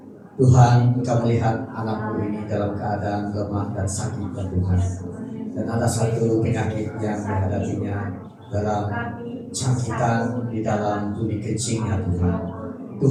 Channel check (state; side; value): identical; both; correlation 1.00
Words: Tuhan, Engkau melihat anakmu ini dalam keadaan lemah dan sakit ya Tuhan. Dan ada satu penyakit yang dihadapinya dalam cangkitan di dalam tuli kencingnya Tuhan.